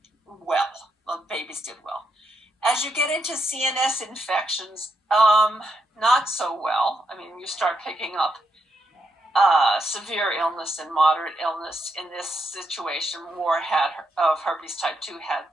well. Well, babies did well. As you get into CNS infections, not so well. I mean, you start picking up severe illness and moderate illness. In this situation, more of herpes type 2 had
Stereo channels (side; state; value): both; normal; correlation 0.81